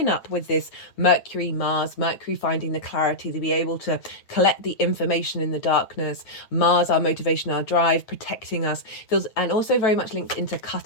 up with this Mercury, Mars, Mercury Mercury finding the clarity to be able to collect the information in the darkness. Mars, our motivation, our drive, protecting us, feels, and also very much linked into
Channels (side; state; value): right; late; 9.0 ms